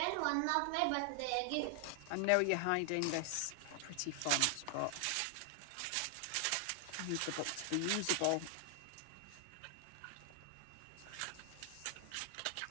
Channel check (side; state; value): both; different; correlation 0.00